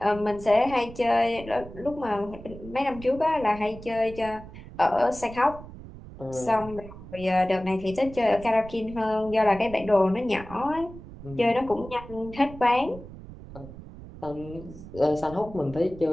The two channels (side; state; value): right; noise; rumble, 15 dB below the sound